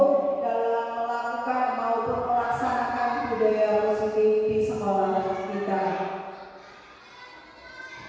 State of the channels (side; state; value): both; identical; correlation 1.00